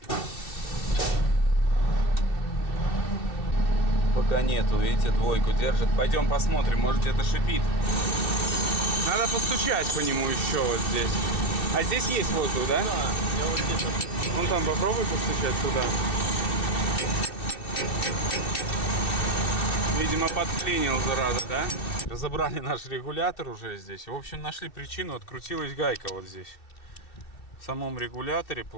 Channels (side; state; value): right; late; 2.7 ms